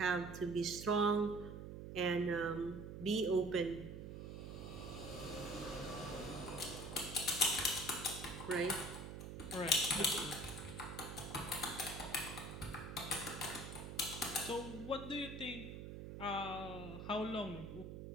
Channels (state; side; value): noise; right; hum, 8 dB below the sound